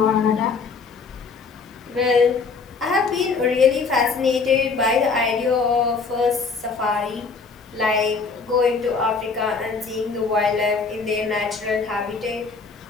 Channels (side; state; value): right; quieter; 4.7 dB